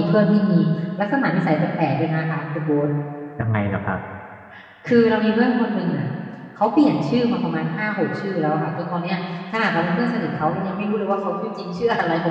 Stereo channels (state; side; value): identical; both; correlation 1.00